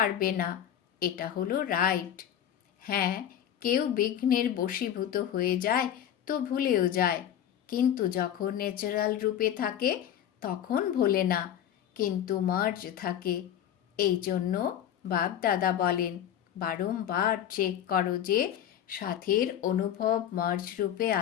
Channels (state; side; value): quieter; right; 10.3 dB